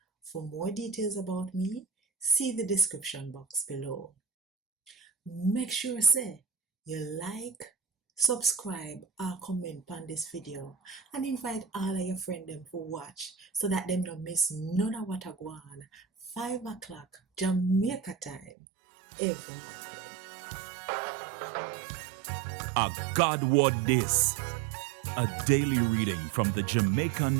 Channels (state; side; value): drops out; left; at 18.5 s